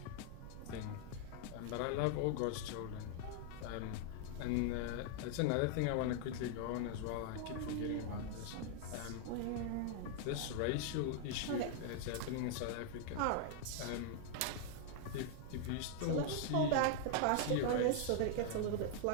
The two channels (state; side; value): different; both; correlation 0.00